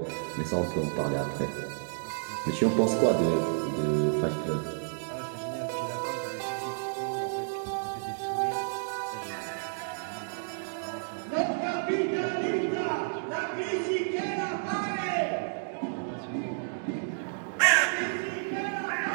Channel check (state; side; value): silent; left; digital silence